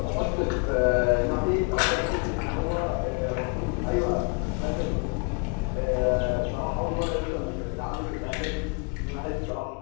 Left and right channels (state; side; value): quieter; right; 33.5 dB